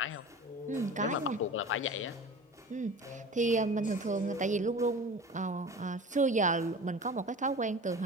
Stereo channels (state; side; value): normal; both; correlation 0.37